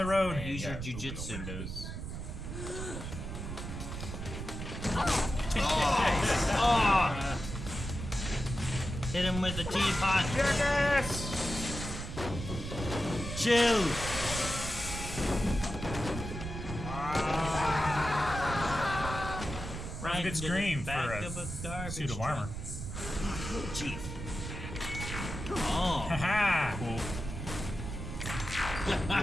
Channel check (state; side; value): noise; right; rumble, 7 dB below the sound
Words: road. Use your Open the jujitsu. windows. Oh! Hit him with the teapot. Yes! Chill. Right, good into the scream back for a of garbage suit of truck. armor. Jeez. Oh. Haha.